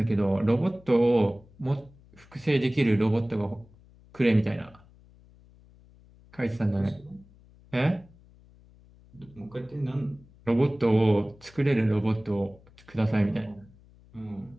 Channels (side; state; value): left; noise; hum, 26 dB below the sound